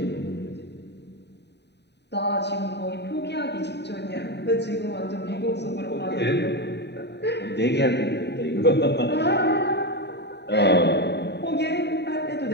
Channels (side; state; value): right; late; 0.50 ms